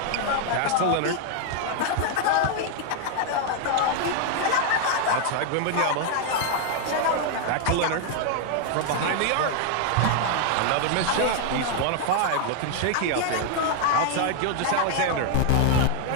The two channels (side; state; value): both; different; correlation 0.00